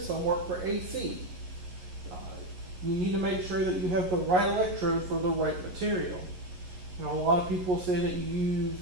some work for AC. You need to make sure that you have the right electrode for the right material. A lot of people say that you use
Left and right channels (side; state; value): left; late; 11 ms